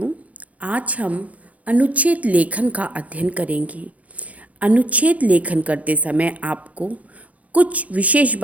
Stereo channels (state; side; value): late; left; 0.067 ms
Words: आज हम अनुच्छेद लेखन का अध्ययन करेंगे। अनुच्छेद लेखन करते समय आपको कुछ विशेष